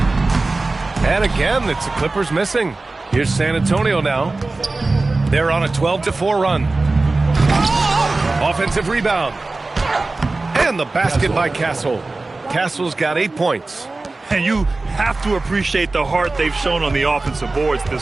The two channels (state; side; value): quieter; left; 3.3 dB